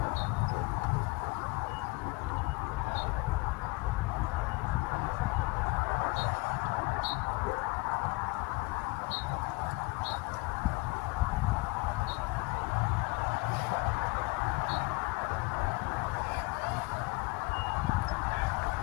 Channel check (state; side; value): quieter; right; 24.7 dB